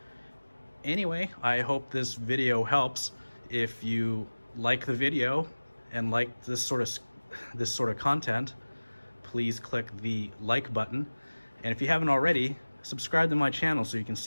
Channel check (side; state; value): both; inverted; correlation -1.00